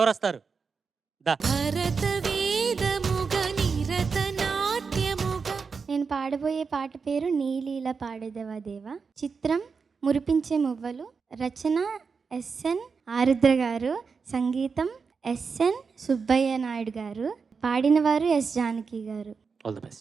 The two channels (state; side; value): quieter; left; 5.3 dB